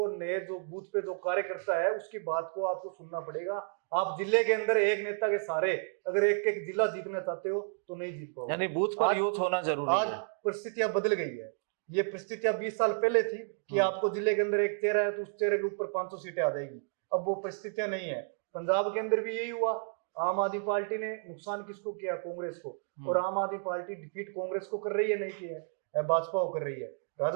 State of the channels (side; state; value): left; silent; 57 dB below the other